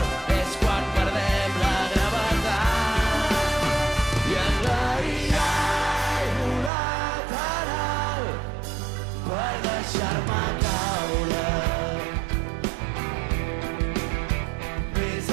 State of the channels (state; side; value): drops out; left; at 6.7 s